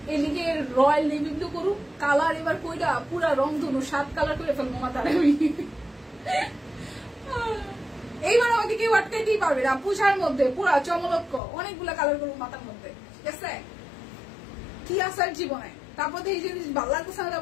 এদিকে রয়্যাল নেভি ব্লু করুন, কালার এবার কইটা পুরা রং ধনু 7 কালার করে ফেলবো মাথার আমি। এইবার আমাকে কেউ আটকাইতেই পারবে না, পূজার মধ্যে পুরা চমলক্ষ অনেকগুলা কালার করবো মাথার মধ্যে, ঠিক আছে? কি আসার জীবনে, তারপর এই জিনিস ভালো লাগতেছে না,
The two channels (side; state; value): right; drops out; at 11.4 s